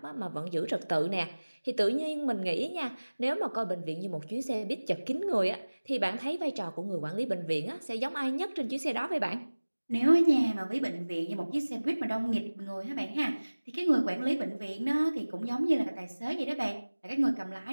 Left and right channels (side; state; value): both; inverted; correlation -1.00